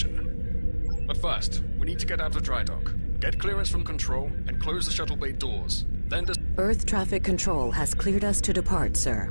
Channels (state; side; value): inverted; both; correlation -1.00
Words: But first, we need to get out of dry dock, get clearance from control, and close the shuttle bay doors. Then Earth traffic control has cleared us to depart, sir.